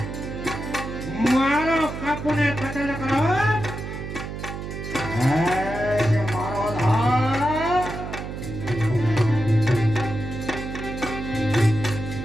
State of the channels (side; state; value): right; noise; hum, 7 dB below the sound